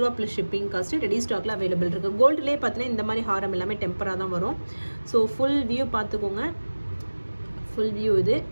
ப்ளஸ் ஷிப்பிங் காஸ்ட்டு ரெடி ஸ்டாக்ல அவைலபிள் இருக்குது. கோல்டுலேயே பார்த்தீங்கன்னா இந்த மாதிரி ஹாரம் எல்லாமே டெம்பராக தான் வரும். ஸோ ஃபுல் வியூ பார்த்துக்கோங்க. ஃபுல் வியூ இது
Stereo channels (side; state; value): both; inverted; correlation -1.00